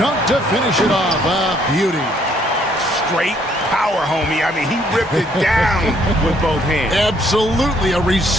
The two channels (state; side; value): normal; both; correlation 0.66